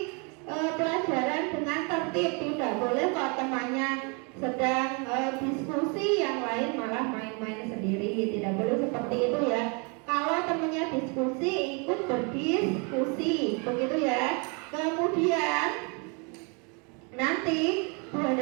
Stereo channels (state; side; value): quieter; left; 33.8 dB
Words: pelajaran dengan tertib. Tidak boleh kalau temannya sedang diskusi, yang lain malah main-main sendiri. Tidak boleh seperti itu ya. Kalau temannya diskusi, ikut berdiskusi, begitu ya. Kemudian nanti Bu